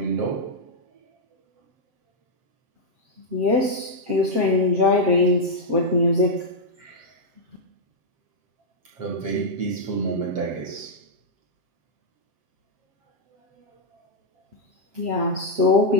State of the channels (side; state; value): left; late; 7.6 ms